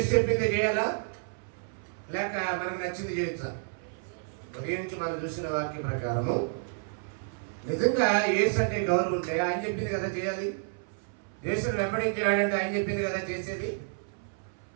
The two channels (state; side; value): silent; left; 58 dB below the other